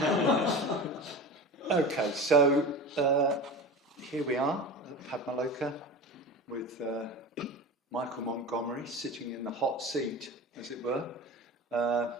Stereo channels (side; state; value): both; normal; correlation 0.31